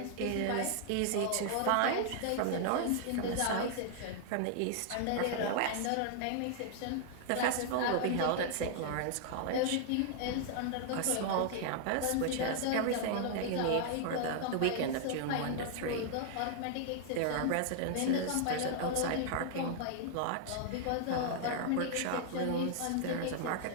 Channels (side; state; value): both; different; correlation 0.00